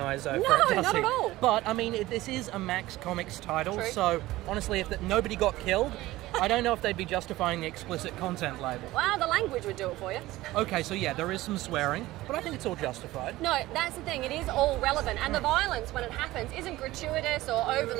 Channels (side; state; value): left; quieter; 17.4 dB